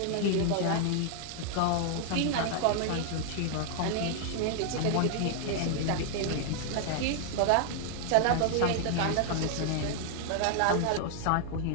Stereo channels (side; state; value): both; different; correlation 0.00